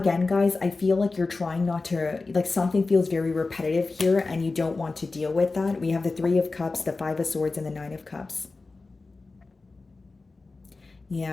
guys, I feel like you're trying not to, like something feels very repetitive here and you don't want to deal with that. We have the Three of Cups, the Five of Swords, and the Nine of Cups.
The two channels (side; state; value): right; quieter; 3.7 dB